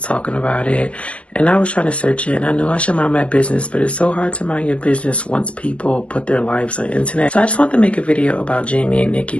talking about it, and I was trying to search it, and I know I should mind my business, but it's so hard to mind your business once people put their lives on the internet. So I just want to make a video about Jamie and Nikki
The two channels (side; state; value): right; late; 0.061 ms